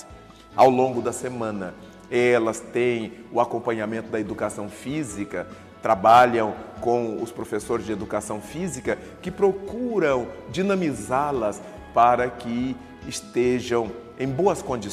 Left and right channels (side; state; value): both; identical; correlation 1.00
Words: Ao longo da semana, elas têm o acompanhamento da educação física, trabalham com os professores de educação física que procuram dinamizá-las para que estejam em boas